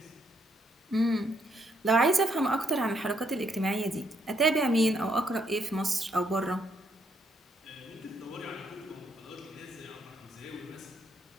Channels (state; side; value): normal; both; correlation 0.74